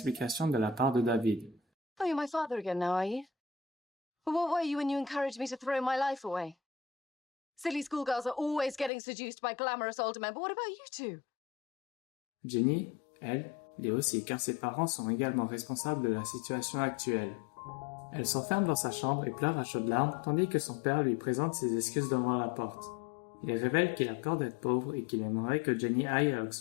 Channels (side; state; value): right; drops out; at 8.9 s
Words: de la part de David. « Oh, you're my father again now, are you? But what were you when you encouraged me to throw my life away? Silly schoolgirls are always getting seduced by glamorous older men, but what about you two? » Jenny, elle, l'est aussi car ses parents sont également responsables de la situation actuelle. Elle s'enferme dans sa chambre et pleure à chaudes larmes tandis que son père lui présente ses excuses devant la porte. Il révèle qu'il a peur d'être pauvre et qu'il aimerait que Jenny aille à